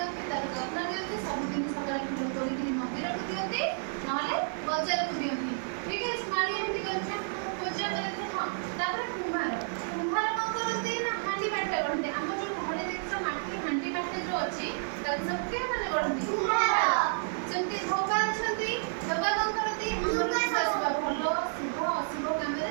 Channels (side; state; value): left; silent; digital silence